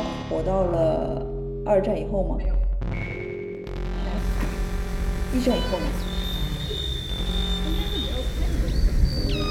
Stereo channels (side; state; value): both; identical; correlation 1.00